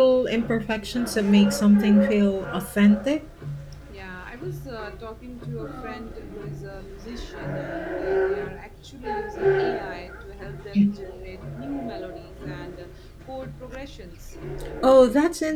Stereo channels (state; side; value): identical; both; correlation 1.00